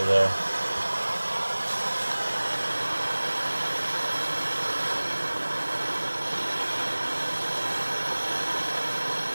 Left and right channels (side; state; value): both; inverted; correlation -1.00